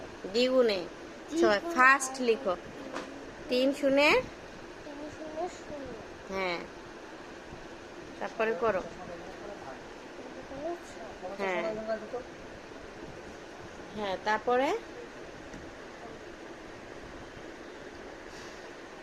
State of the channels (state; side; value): identical; both; correlation 1.00